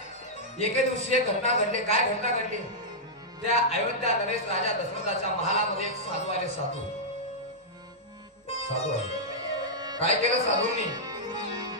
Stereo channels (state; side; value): normal; both; correlation -0.09